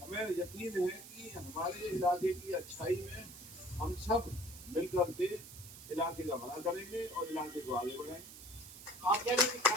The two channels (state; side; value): noise; right; hiss, 15 dB below the sound